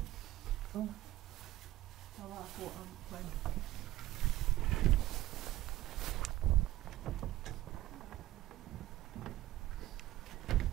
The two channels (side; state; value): left; quieter; 15.5 dB